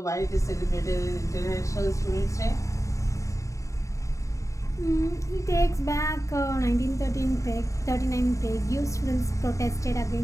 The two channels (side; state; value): right; late; 0.15 ms